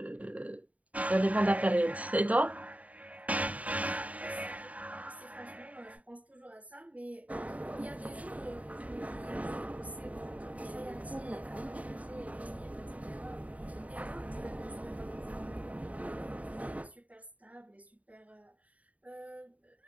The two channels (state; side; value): late; left; 0.069 ms